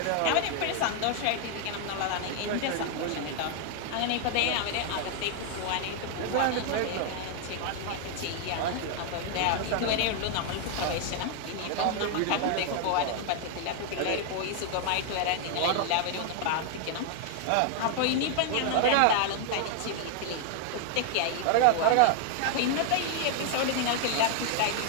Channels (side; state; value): both; different; correlation 0.00